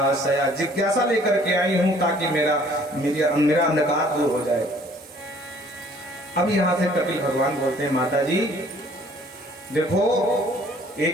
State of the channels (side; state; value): both; normal; correlation 0.57